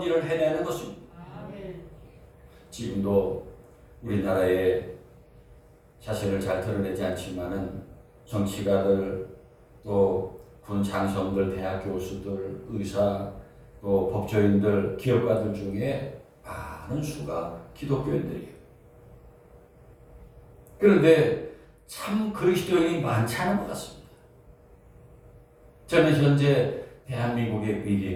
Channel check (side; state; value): both; identical; correlation 1.00